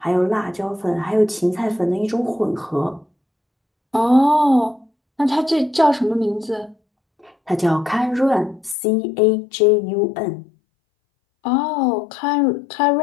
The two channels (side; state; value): right; drops out; at 8.8 s